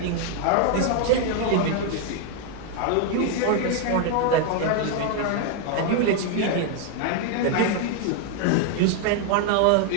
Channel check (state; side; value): different; both; correlation 0.00